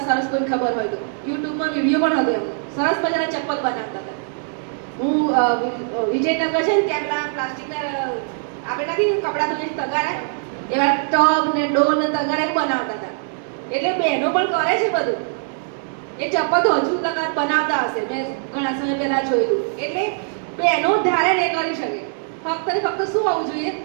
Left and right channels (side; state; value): left; silent; digital silence